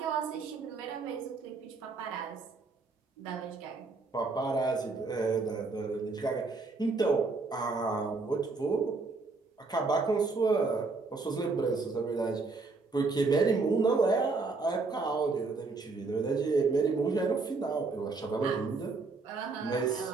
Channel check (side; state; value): left; quieter; 4.0 dB